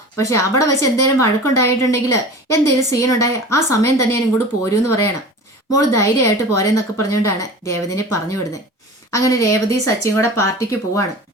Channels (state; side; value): normal; both; correlation 0.37